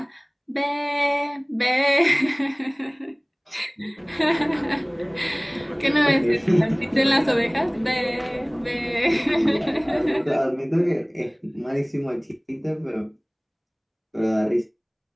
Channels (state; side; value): identical; both; correlation 1.00